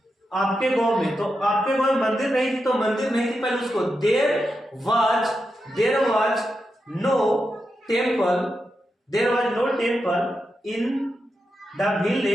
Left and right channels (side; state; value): both; normal; correlation 0.87